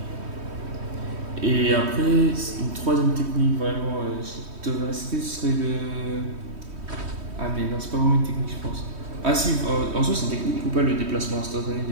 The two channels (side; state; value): left; late; 3.1 ms